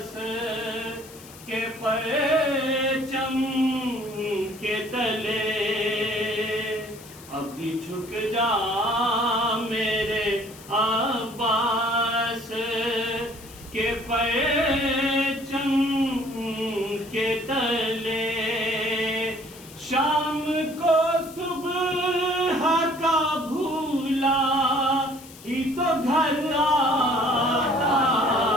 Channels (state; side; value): noise; left; hiss, 19 dB below the sound